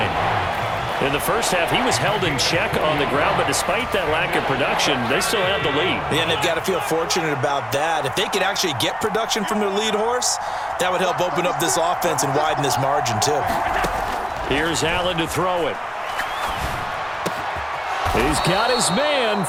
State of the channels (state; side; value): identical; both; correlation 1.00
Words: In the first half, he was held in check on the ground, but despite that lack of production, they still have the lead. Yeah, and they've got to feel fortunate about that. If they could actually get production from their lead horse, that would help open up this offense and widen this margin, too. Here's Allen to throw it. He's got his man,